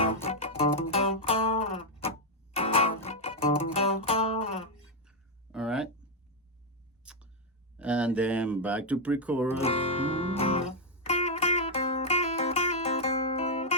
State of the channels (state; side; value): normal; both; correlation 0.00